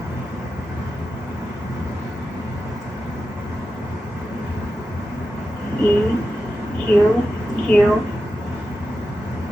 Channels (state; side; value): normal; both; correlation 0.91